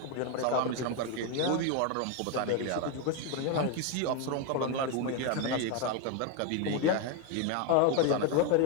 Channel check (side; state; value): both; different; correlation 0.01